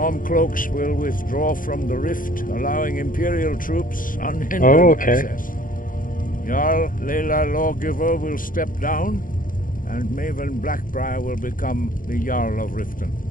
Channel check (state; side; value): late; right; 0.40 ms